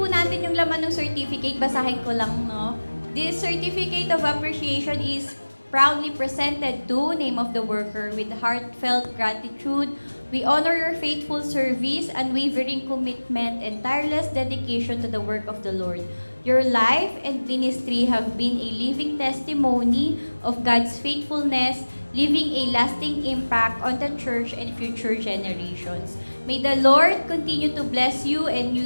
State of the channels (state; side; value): inverted; both; correlation -1.00